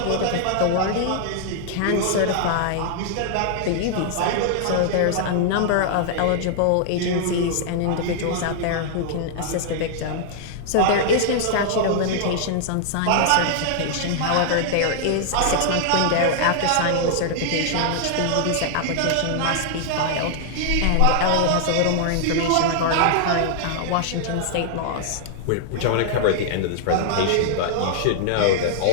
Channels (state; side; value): different; both; correlation -0.01